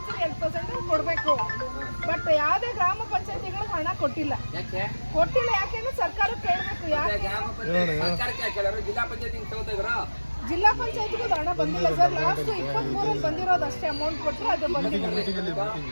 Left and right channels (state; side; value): inverted; both; correlation -1.00